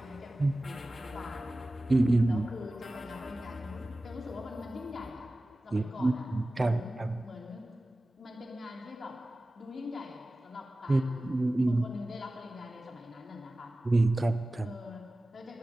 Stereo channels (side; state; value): both; normal; correlation 0.96